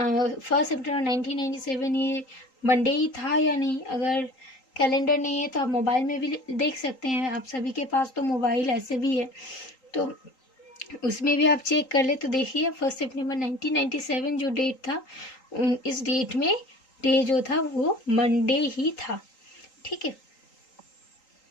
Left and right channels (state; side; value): late; right; 3.8 ms